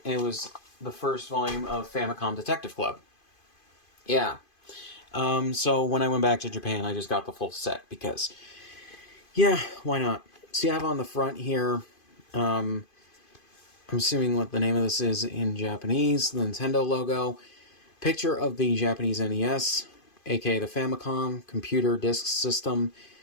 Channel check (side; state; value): right; late; 2.5 ms